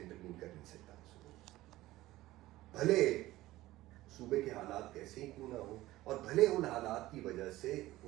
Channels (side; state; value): left; quieter; 16.9 dB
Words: کر نہیں سکتا. بھلے صوبے کے حالات کیسے ہی کیوں نہ ہو اور بھلے ان حالات کی وجہ سے